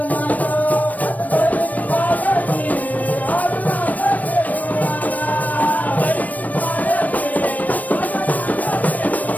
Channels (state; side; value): late; right; 0.076 ms